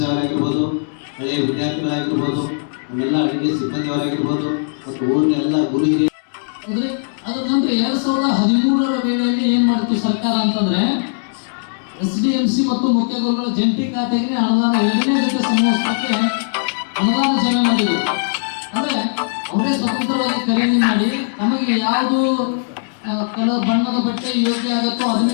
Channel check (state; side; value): silent; right; digital silence